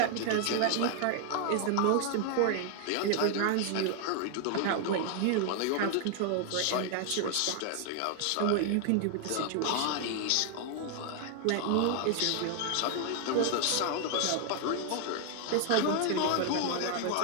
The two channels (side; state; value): both; different; correlation 0.00